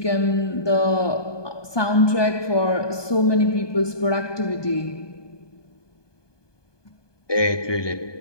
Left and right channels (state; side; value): late; right; 1.2 ms